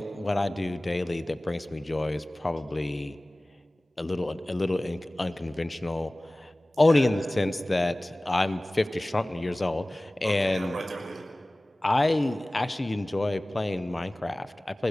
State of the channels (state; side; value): normal; both; correlation 0.98